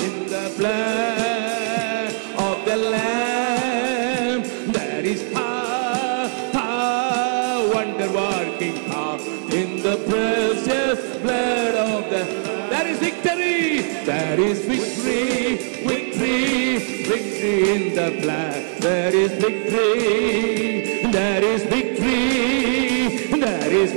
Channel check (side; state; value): left; silent; digital silence